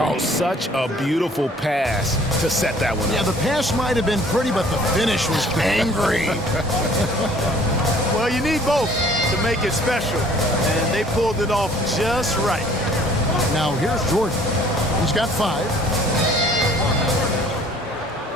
such a beautiful pass to set that one up. Yeah, the pass might have been pretty, but the finish was angry. Well, you need both to make it special, and they pulled it off just right. Now here's Jordan. He's got 5.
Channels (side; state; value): both; normal; correlation 0.55